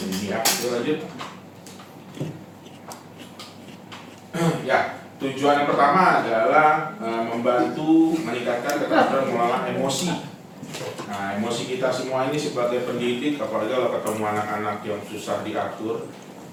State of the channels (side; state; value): both; identical; correlation 1.00